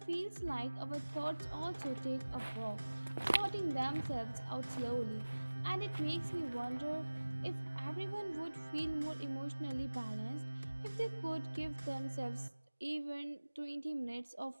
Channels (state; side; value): inverted; both; correlation -1.00